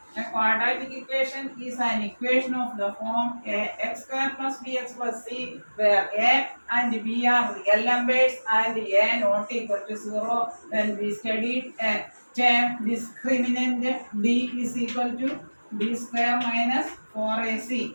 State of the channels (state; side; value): inverted; both; correlation -1.00